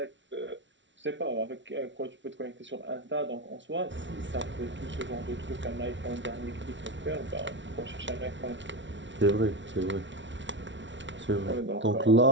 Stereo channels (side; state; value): left; late; 0.54 ms